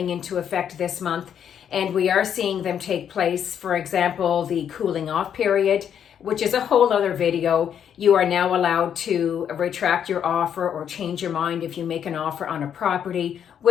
into effect this month. And we are seeing them take place. For example, the cooling off period, which is a whole other video. You are now allowed to retract your offer or change your mind if you make an offer on a property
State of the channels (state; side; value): quieter; right; 8.7 dB